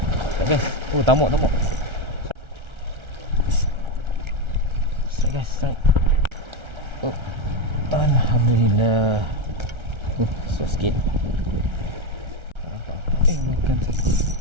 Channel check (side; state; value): left; late; 1.3 ms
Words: Guys. Oh, tamuk. Strike guys, strike. Oh. Alhamdulillah. So sikit. Makan satu.